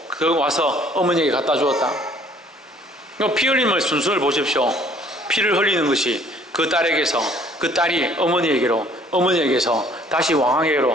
그 와서 어머니에게 갖다 주었다. 피 흘림의 순서를 보십시오. 피를 흘리는 것이 그 딸에게서, 그 딸이 어머니에게로, 어머니에게서 다시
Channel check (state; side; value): normal; both; correlation 0.58